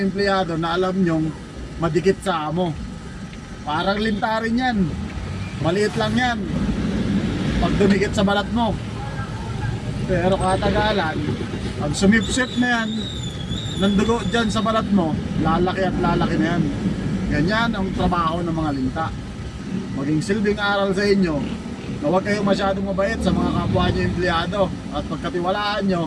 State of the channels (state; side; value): identical; both; correlation 1.00